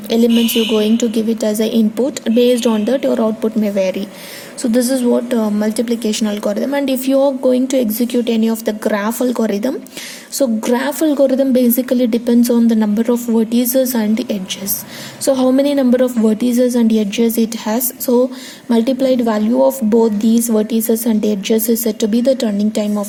you're going to give it as an input, based on that your output may vary. So this is what multiplication algorithm. And if you are going to execute any of the graph algorithm, so graph algorithm basically depends on the number of vertices and the edges. So how many number of vertices and edges it has, so multiplied value of both these vertices and edges is said to be the turning time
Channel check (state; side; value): identical; both; correlation 1.00